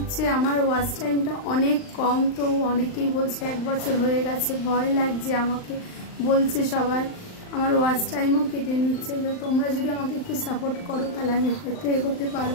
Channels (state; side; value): late; right; 39 ms